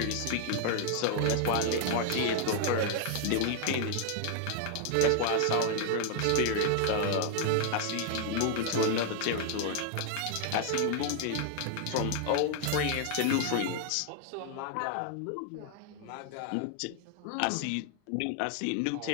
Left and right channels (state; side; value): different; both; correlation 0.00